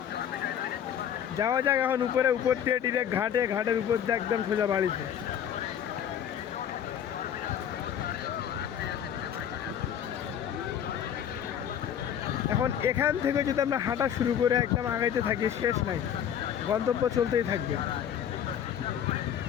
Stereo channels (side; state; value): right; quieter; 9.2 dB